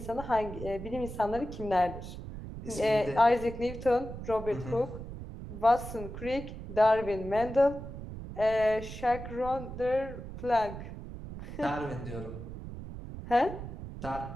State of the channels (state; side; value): noise; right; rumble, 10 dB below the sound